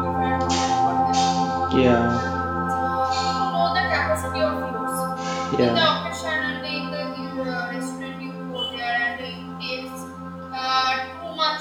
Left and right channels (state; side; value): identical; both; correlation 1.00